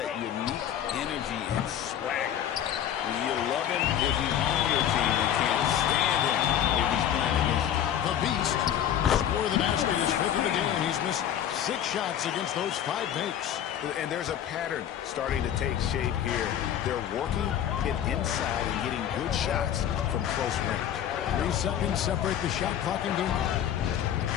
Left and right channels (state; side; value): quieter; right; 10.2 dB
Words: unique energy and swagger. You love him if he's on your team and can't stand him if he's playing against you. The Beast. Score of the basket is 5th of the game. He's missed 6 shots against those 5 makes. And there's a pattern starting to take shape here. They're working it inside and getting good shots from close range. 3 seconds separate the shot clock and game.